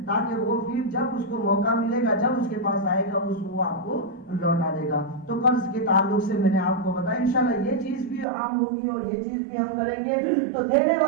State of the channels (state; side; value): drops out; left; at 8.2 s